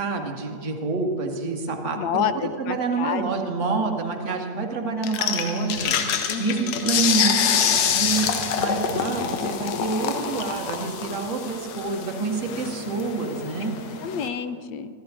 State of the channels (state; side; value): late; right; 8.6 ms